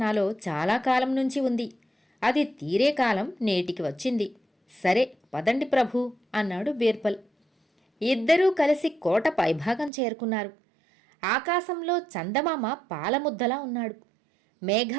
నాలో చాలా కాలం నుంచి ఉంది. అది తీరే కాలం నేటికి వచ్చింది. సరే పదండి ప్రభూ అన్నాడు బీర్బల్. ఇద్దరూ కలిసి కోట పైభాగం చేరుకున్నారు. ఆకాశంలో చందమామ పాలముద్దలా ఉన్నాడు.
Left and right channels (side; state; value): left; drops out; at 9.9 s